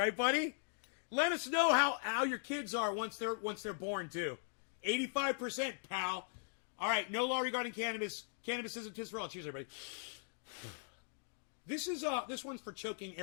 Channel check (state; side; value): silent; right; digital silence